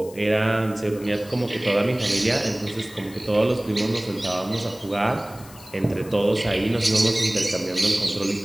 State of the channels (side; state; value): left; noise; hiss, 20 dB below the sound